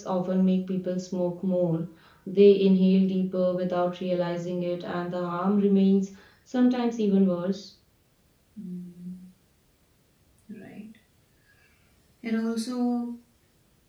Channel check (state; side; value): identical; both; correlation 1.00